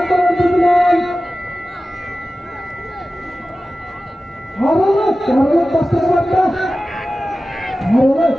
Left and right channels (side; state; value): both; normal; correlation 0.95